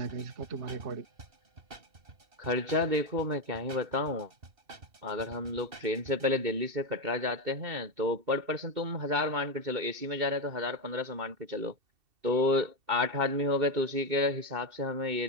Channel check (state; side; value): late; left; 2.7 ms